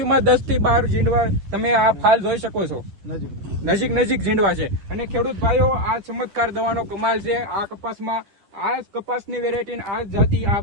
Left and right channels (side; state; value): left; late; 10 ms